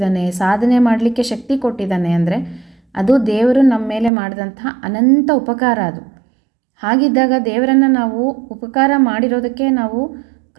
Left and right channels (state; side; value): drops out; left; at 4.1 s